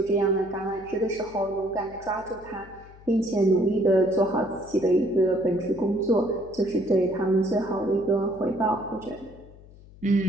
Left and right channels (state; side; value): noise; left; hum, 21 dB below the sound